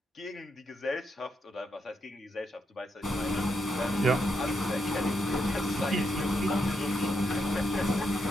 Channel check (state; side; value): normal; both; correlation 0.81